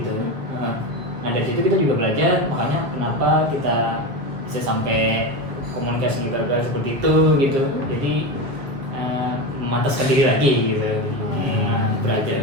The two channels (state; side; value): late; left; 7.2 ms